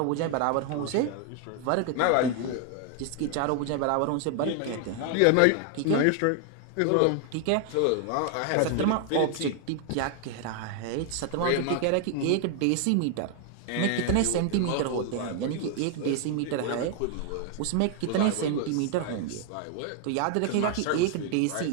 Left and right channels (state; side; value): different; both; correlation 0.00